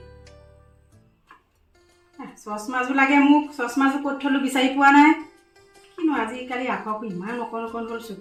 চশমাযোৰ লাগে মোক। চশমাযোৰ ক'ত থলো বিচাৰি পোৱা নাই। কিনো আজিকালি আখৰবোৰ ইমান অকণ অকণ হ'ল,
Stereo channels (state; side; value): identical; both; correlation 1.00